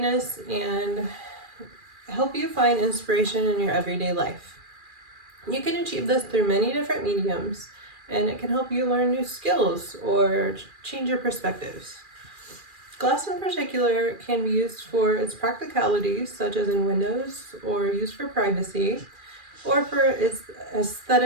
and help you find inspiration in your everyday life. You can achieve this through many different mediums, and it can help you learn new skills or change your perspectives. Glass in particular can be used for its practicalities, such as in windows, or used for privacy, or for its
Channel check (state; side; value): late; left; 2.4 ms